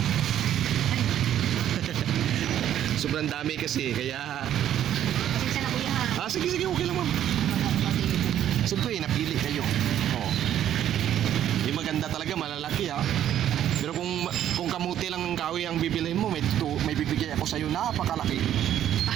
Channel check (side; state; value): left; quieter; 11.0 dB